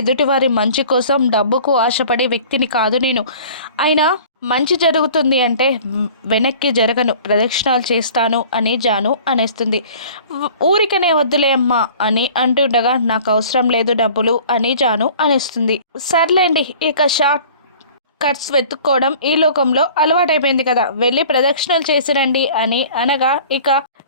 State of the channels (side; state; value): both; inverted; correlation -0.46